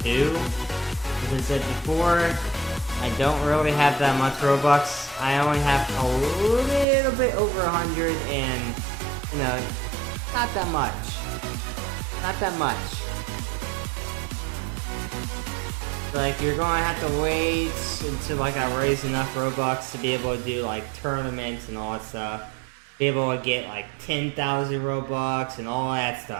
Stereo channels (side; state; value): left; drops out; at 6.9 s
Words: to, as I said before, I don't really have that much Robux. I only have a little bit over 100, and you know, not that much. Not that much. Like, you're gonna have to wait until like I raise enough Robux to be able to do like tournaments and all that stuff. Be able to get like 10,000 Robux and all that